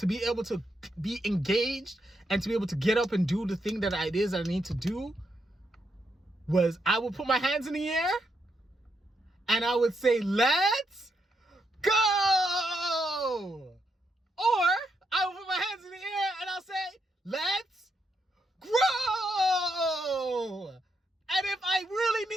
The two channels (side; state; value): both; normal; correlation 0.80